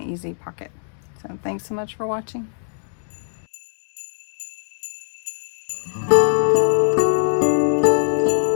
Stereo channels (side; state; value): right; silent; digital silence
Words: easy pocket. So thanks so much for watching.